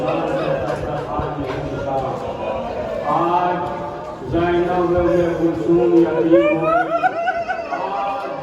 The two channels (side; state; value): both; identical; correlation 1.00